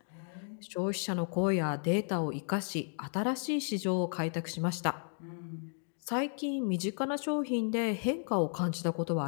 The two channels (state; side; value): silent; right; 55 dB below the other